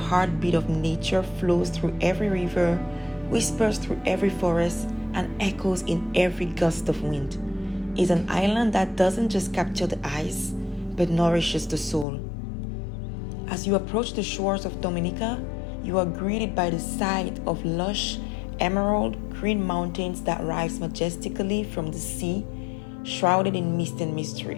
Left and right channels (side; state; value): right; drops out; at 12.1 s